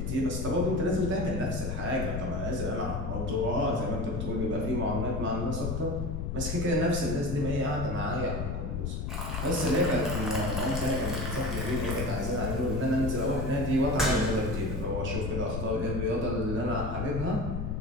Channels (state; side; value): noise; left; rumble, 3 dB below the sound